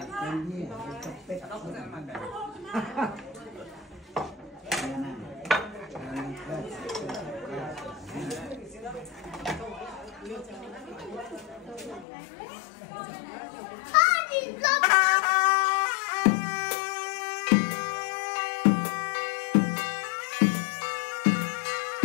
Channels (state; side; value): drops out; right; at 12.1 s